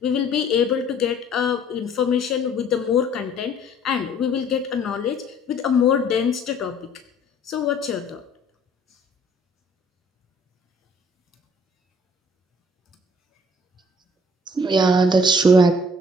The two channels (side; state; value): both; normal; correlation 0.56